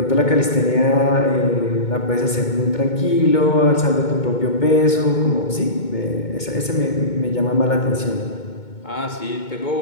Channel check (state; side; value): late; right; 2.2 ms